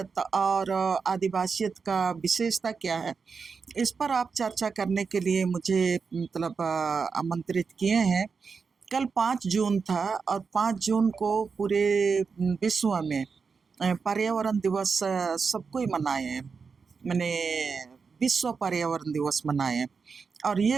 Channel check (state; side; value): quieter; left; 5.3 dB